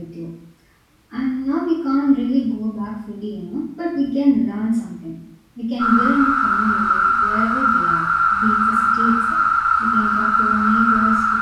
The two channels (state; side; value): identical; both; correlation 1.00